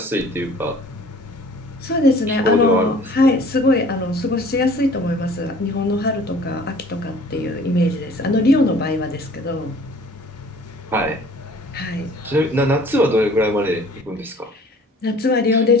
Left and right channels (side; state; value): both; normal; correlation 0.50